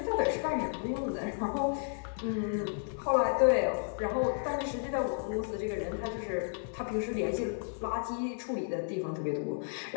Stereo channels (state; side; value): silent; right; digital silence